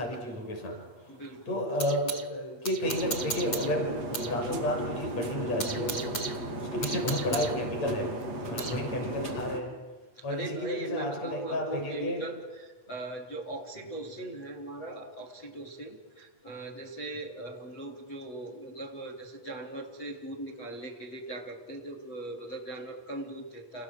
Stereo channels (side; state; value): right; late; 8.2 ms